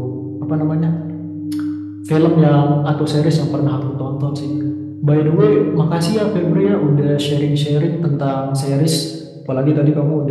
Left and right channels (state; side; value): identical; both; correlation 1.00